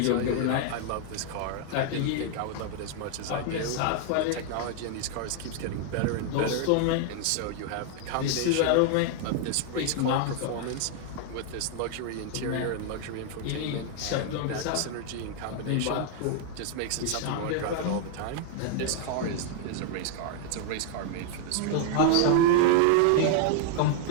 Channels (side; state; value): both; different; correlation 0.00